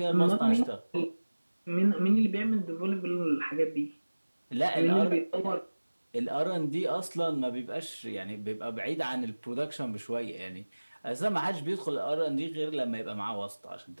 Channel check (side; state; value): both; inverted; correlation -1.00